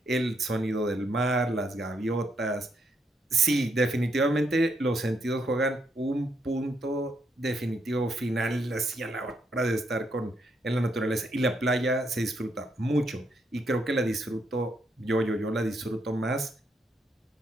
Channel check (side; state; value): both; normal; correlation 0.77